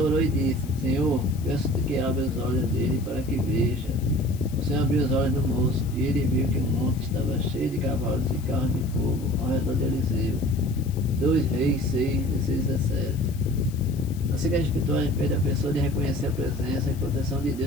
orou e disse: Senhor, peço-te que abra os olhos dele para que veja. O Senhor abriu os olhos do moço, e ele viu que o monte estava cheio de cavalos e carros de fogo ao redor de Eliseu. 2 Reis 6, 16 a 17. A cegueira espiritual impede a pessoa de reconhecer a presença e proteção de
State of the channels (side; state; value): left; noise; hiss, 21 dB below the sound